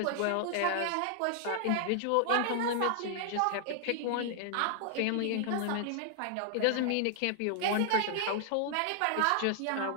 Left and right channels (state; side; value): different; both; correlation 0.00